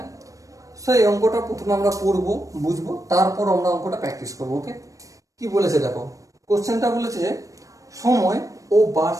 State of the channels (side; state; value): left; late; 0.16 ms